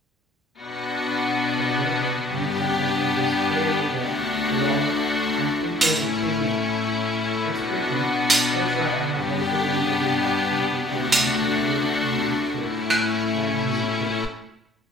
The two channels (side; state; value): both; normal; correlation 0.60